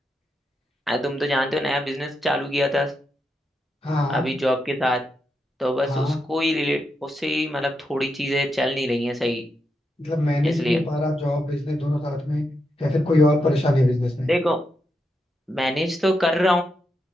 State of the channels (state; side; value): normal; both; correlation 0.84